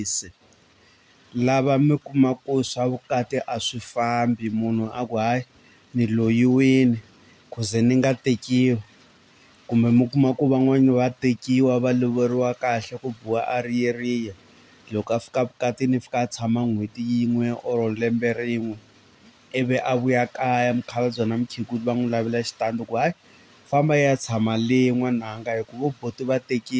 lava mi kuma ku swa vukati a swi fambi, munhu a ku hayi ni loyiwini ku ze ni nga tekiwi, kumbe mi kuma ku van'wani va tekiwa va lovoriwa kahle ku biwa a riyeriya. Loko a fika vukatini fika a tshama n'hweti yin'we or lembe rin'we ivi a vuya kaya mukhalabye na mukhegula va n'wi lavela xitandi ku hayi famba ya tshama le n'wananga hi ku vo buti va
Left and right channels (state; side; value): identical; both; correlation 1.00